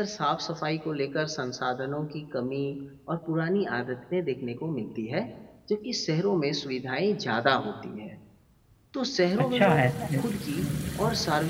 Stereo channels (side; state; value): both; identical; correlation 1.00